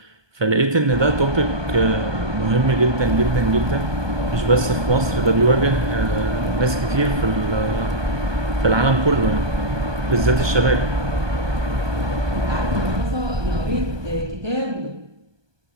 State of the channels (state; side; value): late; left; 1.2 ms